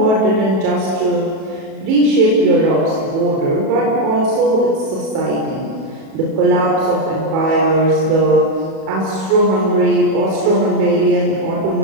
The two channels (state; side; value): late; left; 37 ms